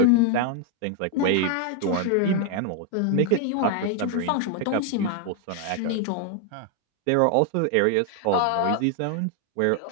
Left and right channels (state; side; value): different; both; correlation 0.01